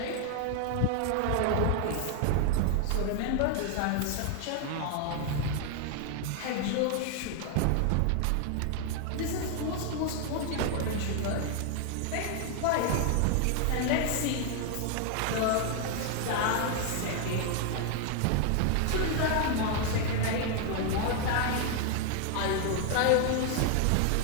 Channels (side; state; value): both; different; correlation 0.00